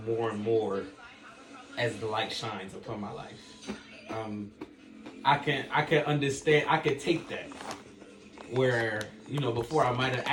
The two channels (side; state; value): both; identical; correlation 1.00